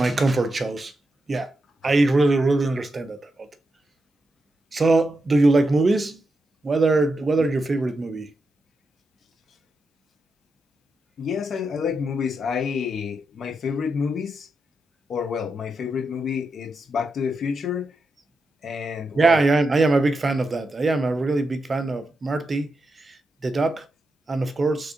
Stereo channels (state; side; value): normal; both; correlation 0.86